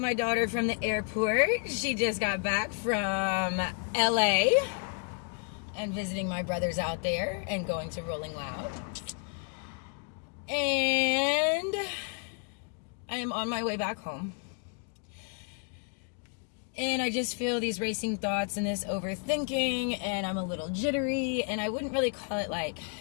my daughter from the airport. She just got back from LA and visiting my brothers out there and going to Rolling Loud. And I am on my way back home. And I just feel these racing thoughts and this overthinking, and I'm a little jittery, and I wouldn't really call it like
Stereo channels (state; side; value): quieter; right; 39.4 dB